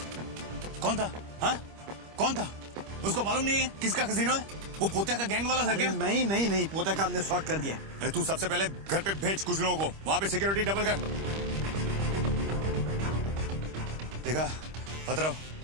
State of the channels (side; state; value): left; late; 25 ms